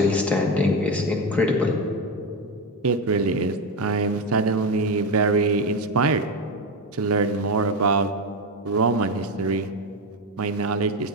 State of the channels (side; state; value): both; normal; correlation 0.14